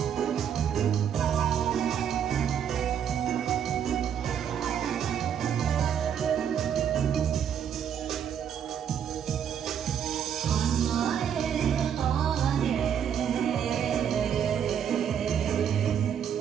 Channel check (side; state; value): left; quieter; 8.6 dB